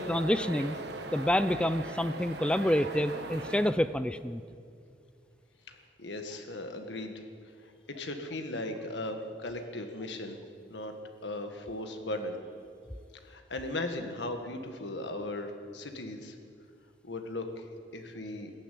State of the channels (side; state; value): both; normal; correlation 0.71